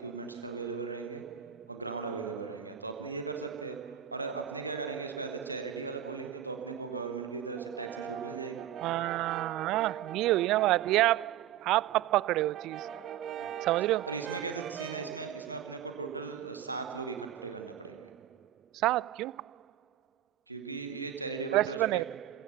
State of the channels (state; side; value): quieter; left; 11.2 dB